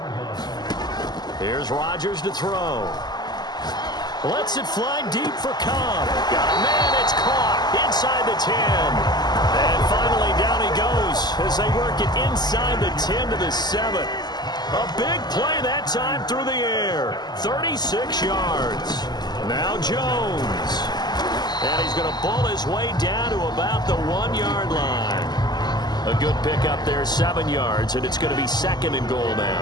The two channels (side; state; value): right; late; 0.20 ms